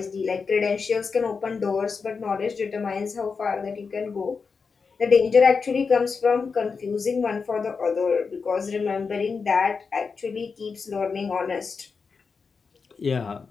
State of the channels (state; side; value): quieter; right; 5.1 dB